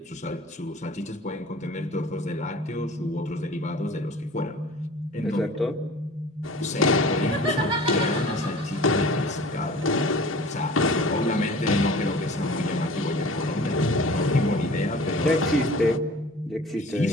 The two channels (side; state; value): both; normal; correlation 0.43